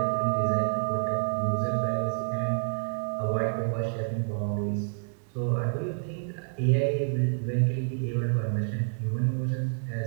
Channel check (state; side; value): silent; left; 59 dB below the other